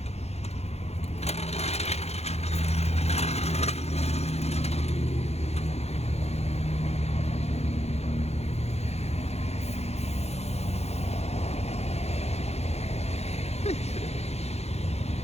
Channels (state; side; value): late; right; 0.31 ms